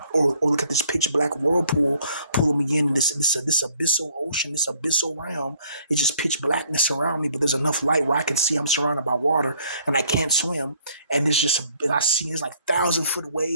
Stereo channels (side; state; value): both; inverted; correlation -0.61